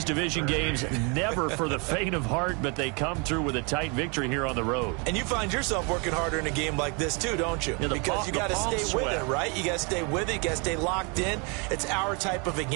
division games, never for the faint of heart, but they come through with a tight victory here on the road. And you find yourself working harder in a game like this too, don't you? Yeah, because you got to stay sweat. with it, right? You got to stay with it. You got to stay locked in. It's our type of a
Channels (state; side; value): quieter; left; 32.5 dB